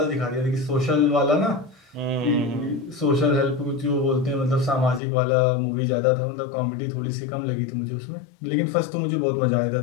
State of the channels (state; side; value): drops out; right; at 5.0 s